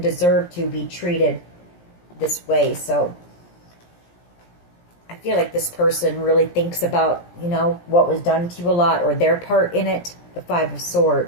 deserve to be treated this way. So I feel like this person really thinks about, you know, what was done to you a lot, or their part in it. the Five of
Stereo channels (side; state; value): right; late; 17 ms